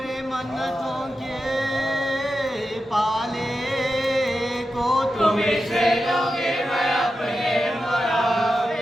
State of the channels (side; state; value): both; normal; correlation 0.90